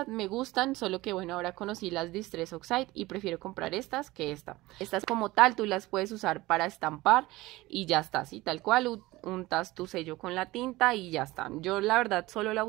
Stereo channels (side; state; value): left; quieter; 19.5 dB